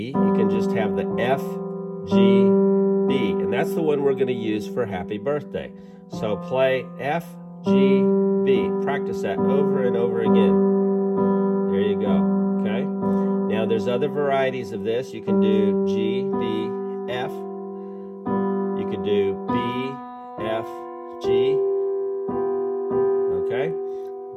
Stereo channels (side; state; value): both; identical; correlation 1.00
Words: You can just have the F, G, B. And that's the one we're going to use for Happy Birthday. So play F, G, B. Practice that over and over again. There you go, okay? Now there's other varieties of this. You can do G, B, F. You could do B, F, G. Okay?